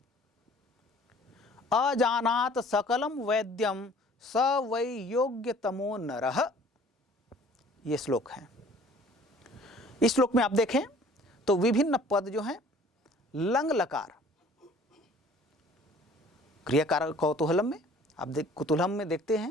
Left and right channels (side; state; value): both; normal; correlation 0.52